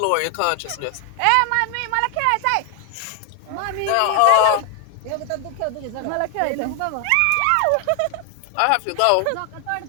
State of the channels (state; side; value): different; both; correlation 0.00